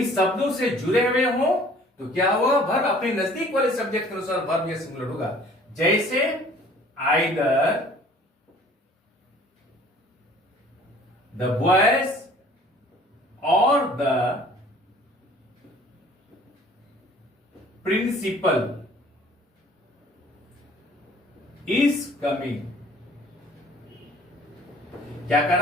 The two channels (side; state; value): both; normal; correlation 0.53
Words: शब्दों से जुड़े हुए हों तो क्या होगा? वर्ब अपने नजदीक वाले सब्जेक्ट के अनुसार वर्ब या सिंगुलर होगा। जैसे आइदर द बॉयज और द प्रिंसिपल इज कमिंग। क्या